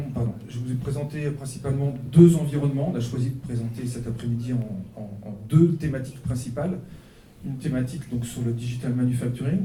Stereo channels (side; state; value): both; identical; correlation 1.00